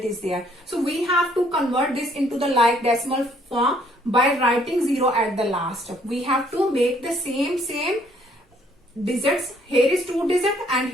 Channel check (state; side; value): normal; both; correlation 0.64